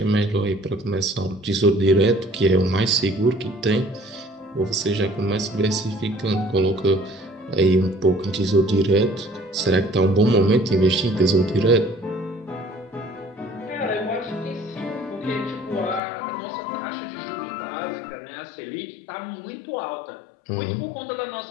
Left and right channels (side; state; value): right; drops out; at 16.0 s